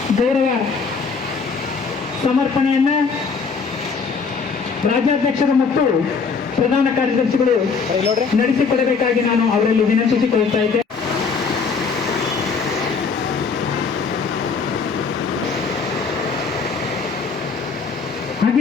ಗೌರವ ಸಮರ್ಪಣೆಯನ್ನ ರಾಜ್ಯಾಧ್ಯಕ್ಷರು ಮತ್ತು ಪ್ರಧಾನ ಕಾರ್ಯದರ್ಶಿಗಳು ನಡೆಸಿಕೊಡಬೇಕಾಗಿ ನಾನು ಅವರಲ್ಲಿ ವಿನಂತಿಸಿಕೊಳ್ಳುತ್ತಾ ಇದ್ದೆ.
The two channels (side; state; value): right; quieter; 5.2 dB